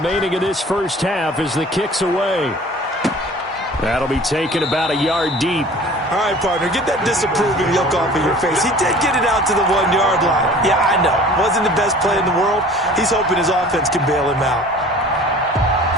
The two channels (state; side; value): normal; both; correlation 0.46